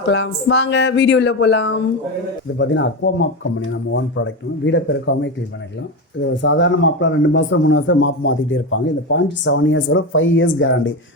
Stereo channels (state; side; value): normal; both; correlation 0.17